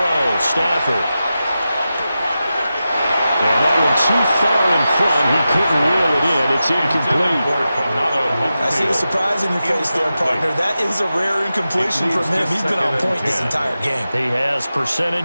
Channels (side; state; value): both; inverted; correlation -0.92